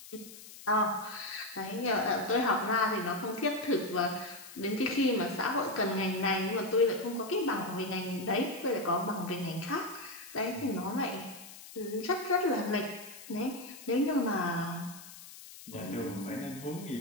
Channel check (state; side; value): noise; left; hiss, 16 dB below the sound